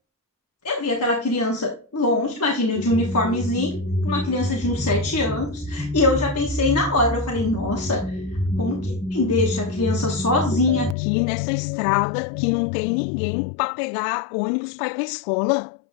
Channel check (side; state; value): right; drops out; at 11.0 s